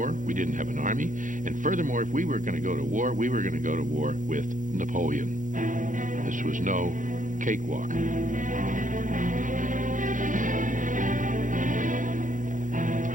we didn't have an army, and furthermore, if we were going to go to war, we were going to go to war with Napoleon. This was no cakewalk.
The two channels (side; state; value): left; late; 0.38 ms